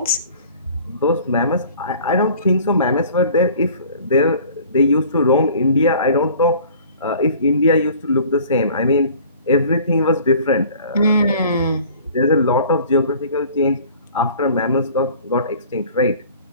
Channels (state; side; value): inverted; both; correlation -0.48